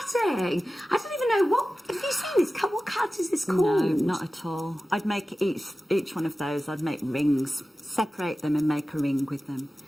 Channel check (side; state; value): both; normal; correlation 0.95